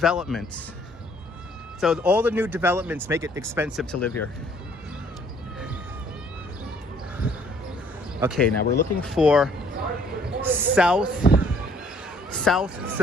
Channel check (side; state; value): both; normal; correlation 0.61